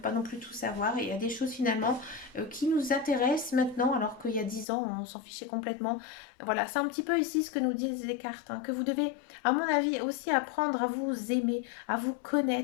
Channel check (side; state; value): right; drops out; at 4.7 s